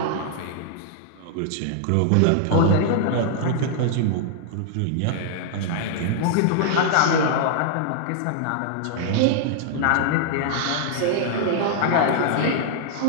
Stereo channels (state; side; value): different; both; correlation -0.01